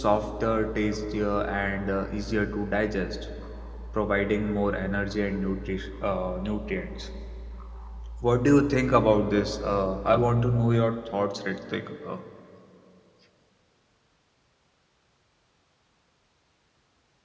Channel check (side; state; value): both; identical; correlation 1.00